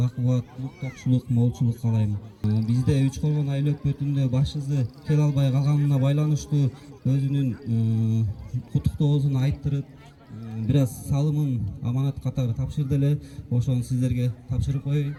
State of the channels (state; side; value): identical; both; correlation 1.00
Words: токчулук, молчулук каалайм. Бизде 3 колгон айыл өкмөтүндө башчысы келе албай калганына байланыштуу өзүнүн куттуктоосун айттырып, бир аз салымын аманат катары тапшырды эле. Ошону сиздерге тапшырып коеюн.